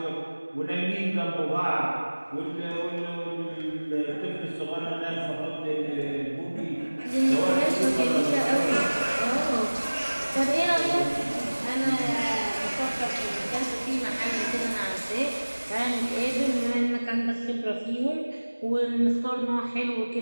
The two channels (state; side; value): inverted; both; correlation -1.00